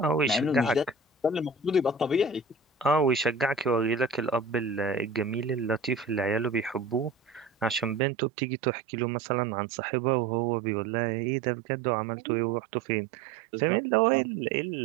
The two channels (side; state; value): left; drops out; at 8.0 s